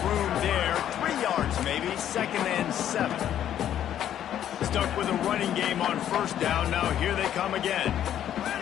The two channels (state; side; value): quieter; right; 10.7 dB